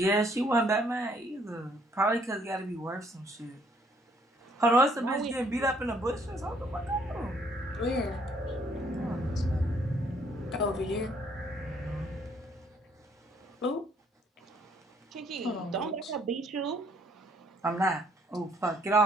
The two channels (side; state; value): both; normal; correlation 0.66